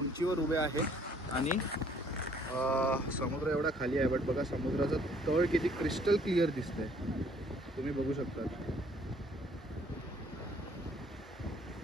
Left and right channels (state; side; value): normal; both; correlation 0.61